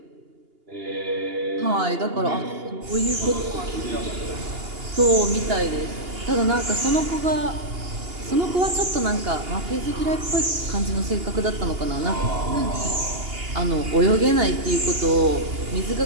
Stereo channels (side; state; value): left; late; 2.8 ms